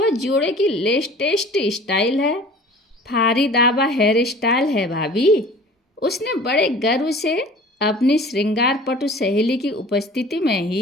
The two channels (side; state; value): both; normal; correlation 0.45